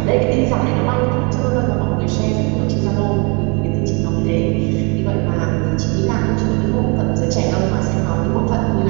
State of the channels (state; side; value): quieter; left; 31.7 dB